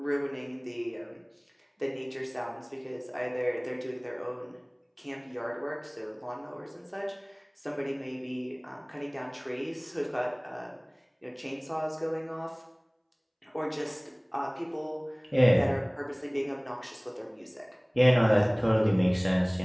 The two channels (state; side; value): identical; both; correlation 1.00